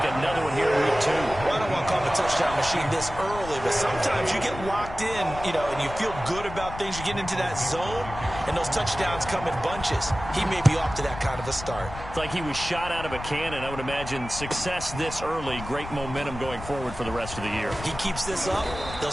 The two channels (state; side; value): noise; left; rumble, 11 dB below the sound